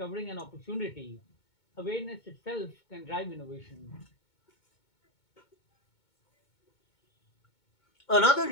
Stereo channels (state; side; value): late; right; 2.2 ms